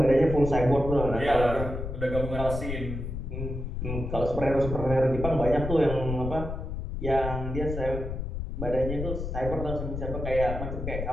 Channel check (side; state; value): left; noise; rumble, 5 dB below the sound